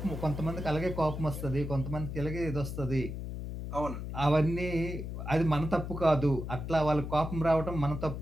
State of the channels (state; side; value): noise; left; hum, 6 dB below the sound